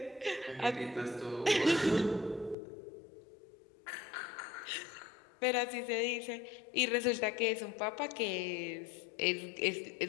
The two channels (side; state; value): right; drops out; at 2.6 s